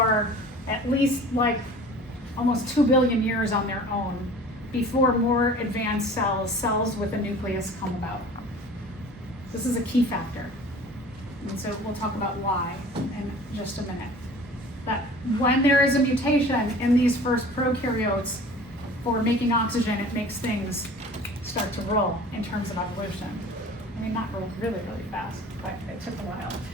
at least like almost 2 billion years on their own before more advanced cells with a nucleus come about. This is a key factor. And so we'll talk about why in just a minute. That when there is a mutation in these first prokaryotes for making oxygen, it makes things start to roll in terms of evolution. I mean, not roll really, really fast, but it took a while.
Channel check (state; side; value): normal; both; correlation 0.44